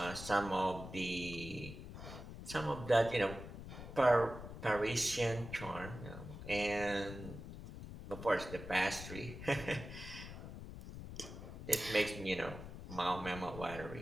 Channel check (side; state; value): left; noise; rumble, 11 dB below the sound